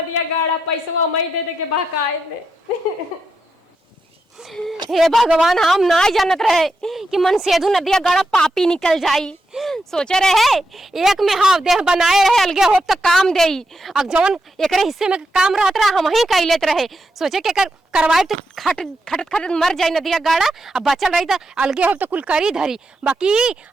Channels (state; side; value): normal; both; correlation 0.85